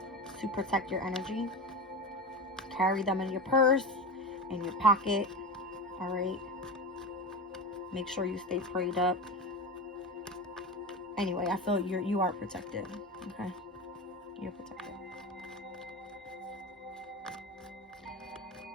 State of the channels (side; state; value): both; normal; correlation 0.24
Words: to protect your energy. Carry them in your purse, in your pocket, all right. Make sure you stay prayed up. Anyway, I feel you are protected, okay? You're protected.